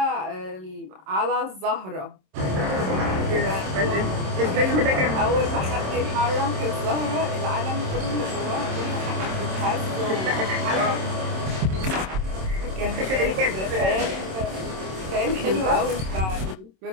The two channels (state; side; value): late; left; 27 ms